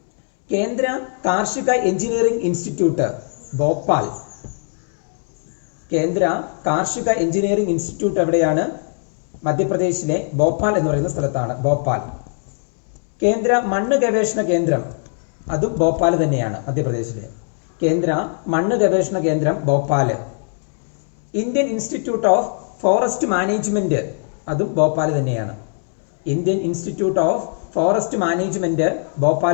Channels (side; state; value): right; silent; 62 dB below the other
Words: കേന്ദ്ര കാർഷിക എഞ്ചിനീയറിംഗ് ഇൻസ്റ്റിറ്റ്യൂട്ട് ഭോപ്പാൽ. കേന്ദ്ര കാർഷിക എഞ്ചിനീയറിംഗ് ഇൻസ്റ്റിറ്റ്യൂട്ട് എവിടെയാണ്? മധ്യപ്രദേശിലെ ഭോപ്പാൽ എന്ന് പറയുന്ന സ്ഥലത്താണ്, ഭോപ്പാൽ. കേന്ദ്ര മണ്ണ് ഗവേഷണ കേന്ദ്രം, അതും ഭോപ്പാൽ തന്നെയാണ്, മധ്യപ്രദേശിലെ. കേന്ദ്ര മണ്ണ് ഗവേഷണ കേന്ദ്രം Bhopal. Indian institute of forest management, അതും ഭോപ്പാൽ തന്നെയാണ്. Indian institute of forest management